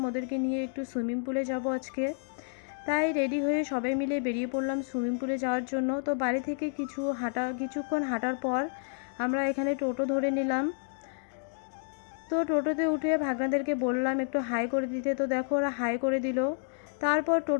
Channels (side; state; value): right; silent; digital silence